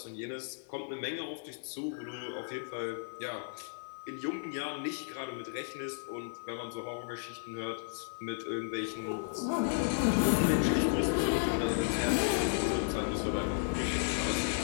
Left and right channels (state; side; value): silent; right; digital silence